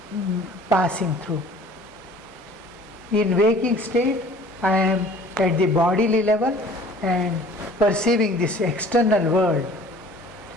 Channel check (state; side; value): normal; both; correlation 0.49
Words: passing through. In waking state, I am at the bodily level and perceiving this external world,